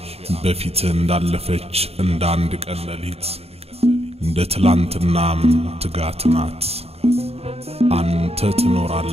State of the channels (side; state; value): left; late; 0.29 ms